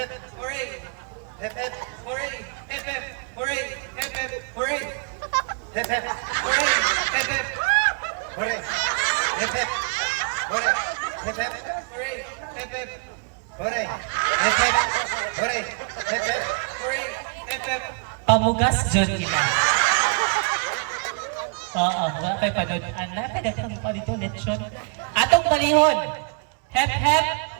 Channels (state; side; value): quieter; left; 37.5 dB